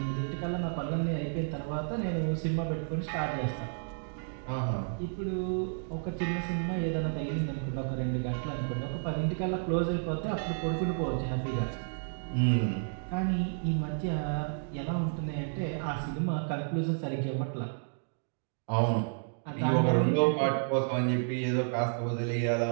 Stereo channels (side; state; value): left; silent; digital silence